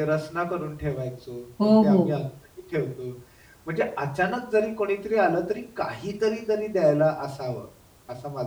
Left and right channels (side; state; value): both; identical; correlation 1.00